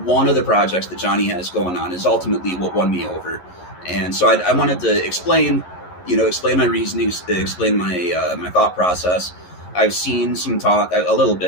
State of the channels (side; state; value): right; late; 11 ms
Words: one of the projects that Johnny has going on is ultimately what won me over, and so I wanted to explain my reasonings, explain my thought process. I've seen some talk, a little